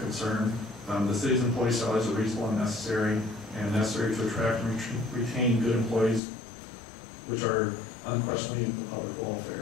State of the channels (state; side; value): drops out; right; at 6.2 s